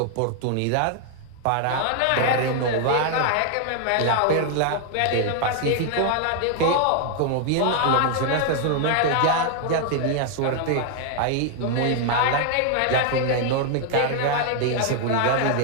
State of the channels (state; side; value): different; both; correlation 0.00